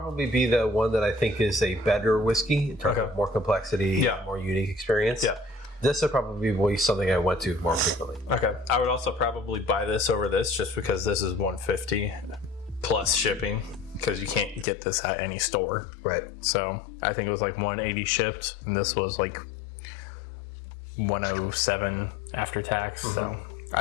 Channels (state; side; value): drops out; right; at 14.7 s